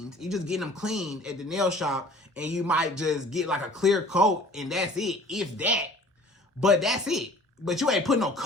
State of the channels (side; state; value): both; normal; correlation 0.49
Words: You just get them cleaned at the nail shop, and you might just get like a clear coat, and that's it, if that. But that's it. but you ain't put no